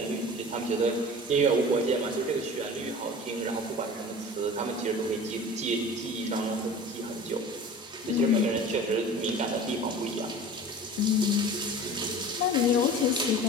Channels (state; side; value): normal; both; correlation 0.39